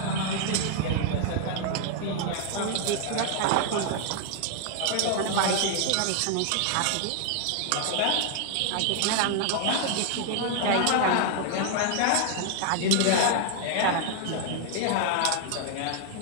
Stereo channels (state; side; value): different; both; correlation 0.00